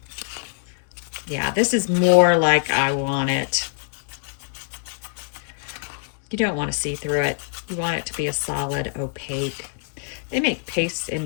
Yeah, this is more like I want it. You don't want to see through it. You want it to be a solid opaque. They make pastes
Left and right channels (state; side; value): silent; right; digital silence